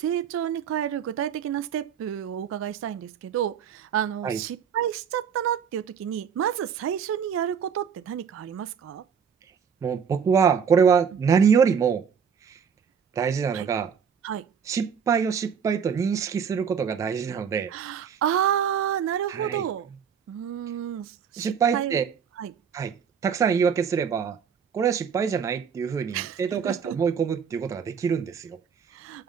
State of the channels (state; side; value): quieter; left; 7.1 dB